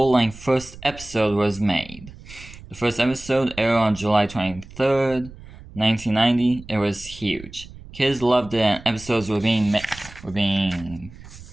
first episode was made. The first episode aired on July 23rd, 1990. It was huge. Kids loved it and episodes were being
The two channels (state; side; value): noise; right; rumble, 17 dB below the sound